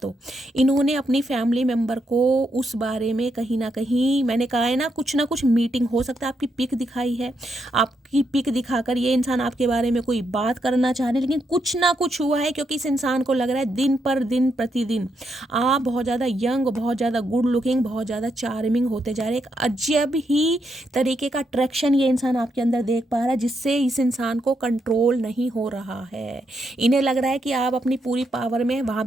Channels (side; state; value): both; normal; correlation 0.80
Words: इन्होंने अपनी फैमिली मेम्बर को उस बारे में कहीं ना कहीं, मैंने कहा है ना कुछ मीटिंग हो सकता है, आपकी पिक दिखाई है, आपकी पिक दिखाकर ये इंसान आपके बारे में कोई बात करना चाह रहे हैं, लेकिन कुछ ना कुछ हुआ है, क्योंकि इस इंसान को लग रहा है दिन पर दिन प्रतिदिन आप बहुत ज़्यादा यंग, बहुत ज़्यादा गुड लुकिंग, बहुत ज़्यादा चार्मिंग होते जा रहे हैं। एक अजब ही तरीके का अट्रैक्शन ये इंसान आपके अंदर देख पा रहा है, जिससे इस इंसान को कंट्रोल नहीं हो रहा है। इन्हें लग रहा है कि आप अपनी पूरी पावर में, वहाँ